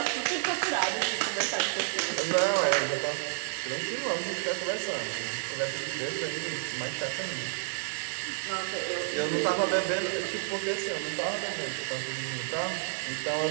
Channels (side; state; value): left; silent; digital silence